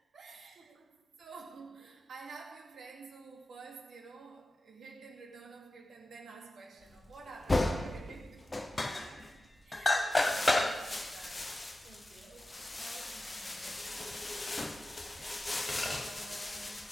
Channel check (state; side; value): normal; both; correlation 0.94